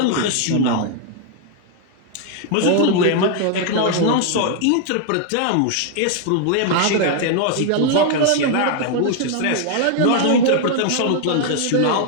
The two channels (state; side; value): different; both; correlation 0.00